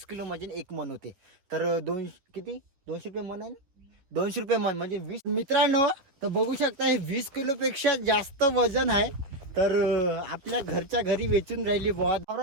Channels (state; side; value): late; left; 11 ms